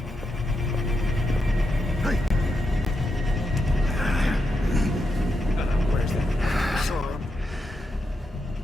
Where's that sword?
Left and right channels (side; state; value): both; normal; correlation 0.85